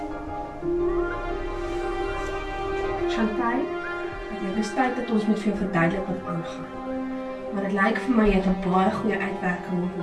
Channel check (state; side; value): identical; both; correlation 1.00